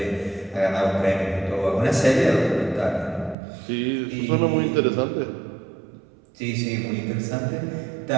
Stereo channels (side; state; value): left; drops out; at 3.4 s